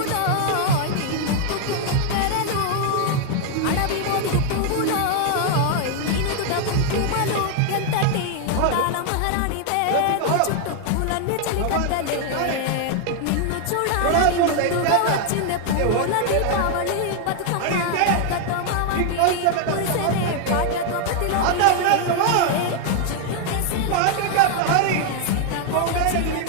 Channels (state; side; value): different; both; correlation 0.00